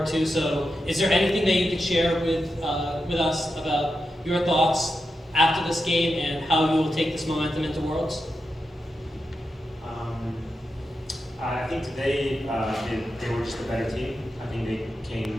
to, so is there anything that you could share with us about your thoughts after this game and how you will take this momentum into Worlds? I think today they were just a better team. I think they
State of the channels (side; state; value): both; normal; correlation 0.88